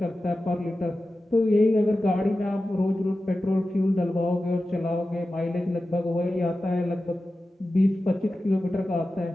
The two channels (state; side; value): normal; both; correlation 0.94